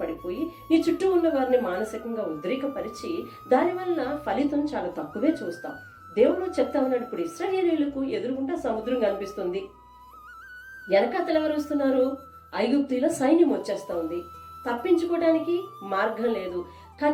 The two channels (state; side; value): identical; both; correlation 1.00